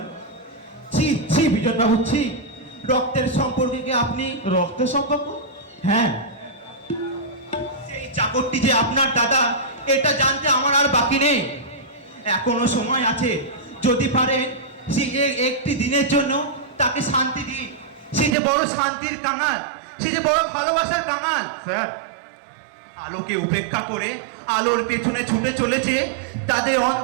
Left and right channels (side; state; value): left; drops out; at 18.4 s